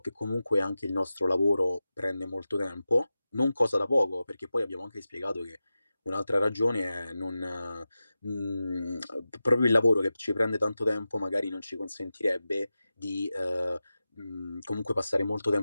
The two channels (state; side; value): inverted; both; correlation -0.93